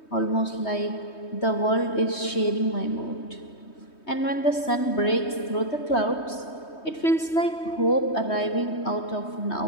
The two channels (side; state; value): right; late; 3.2 ms